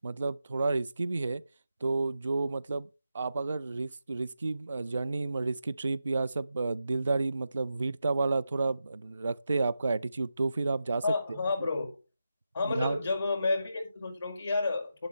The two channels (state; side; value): inverted; both; correlation -0.88